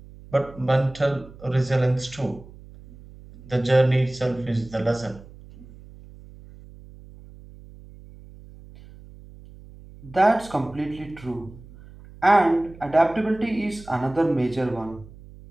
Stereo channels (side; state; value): right; noise; hum, 20 dB below the sound